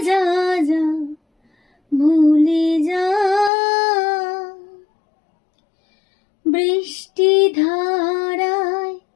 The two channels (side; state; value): right; drops out; at 3.5 s